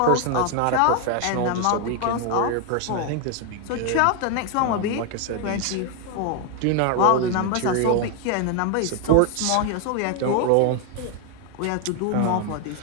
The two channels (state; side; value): different; both; correlation 0.01